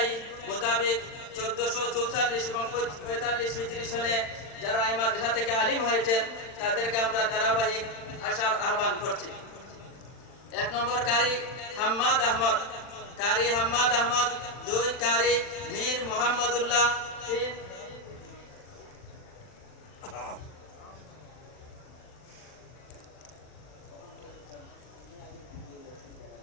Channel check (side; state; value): right; late; 40 ms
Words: মোতাবেক 1444 এবং 45 হিজরি সনে যারা এই মাদ্রাসা থেকে আলিম হয়েছেন তাদেরকে আমরা ধারাবাহিক আসার আহ্বান করছি। 1 নম্বর কারি হাম্মাদ আহমদ, কারি হাম্মাদ আহমদ। 2 কারি মীর মোহাম্মদুল্লাহ। 3